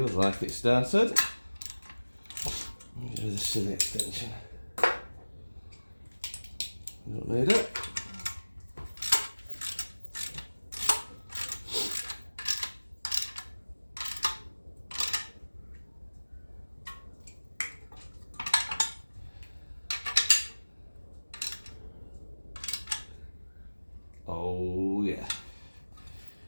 like it started. Do the silly extension. Don't need it. Oh yeah.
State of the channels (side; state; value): both; inverted; correlation -1.00